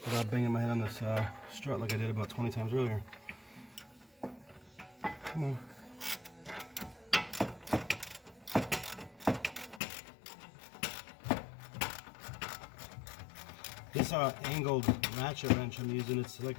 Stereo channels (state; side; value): drops out; right; at 9.8 s